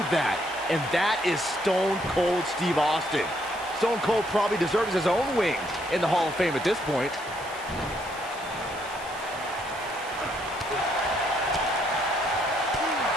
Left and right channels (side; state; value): right; noise; hiss, 18 dB below the sound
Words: that, and that is Stone Cold Steve Austin. Stone Cold probably deserves his own wing in the Hall of Fame at this point.